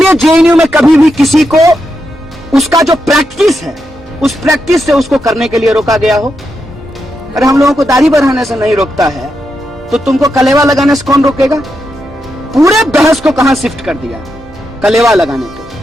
जेएनयू में कभी भी किसी को उसका जो प्रैक्टिस है, उस प्रैक्टिस से उसको करने के लिए रोका गया हो? अरे हम लोगों को दाढ़ी बढ़ाने से नहीं रोकता है, तो तुमको कलेवा लगाने से कौन रोकेगा? पूरे बहस को कहां शिफ्ट कर दिया? कलेवा लगाने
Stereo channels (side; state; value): both; normal; correlation 0.85